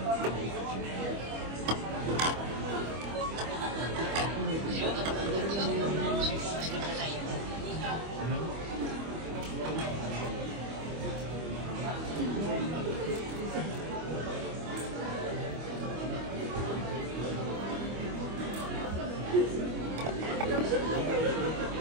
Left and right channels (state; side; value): late; left; 25 ms